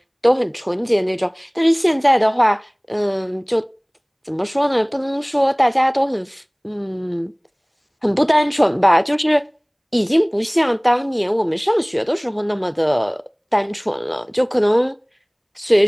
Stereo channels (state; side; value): identical; both; correlation 1.00